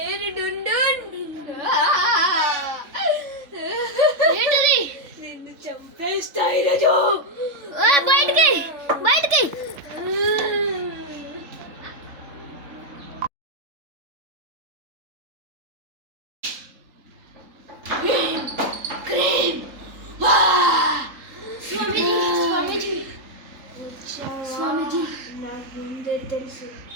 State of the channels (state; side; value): late; left; 3.7 ms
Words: డుండున్ ఏంటిది నిన్ను చంపేస్తా ఈరోజు బయటికి బయటికి స్వామీజీ నాకు ముందే తెలుసు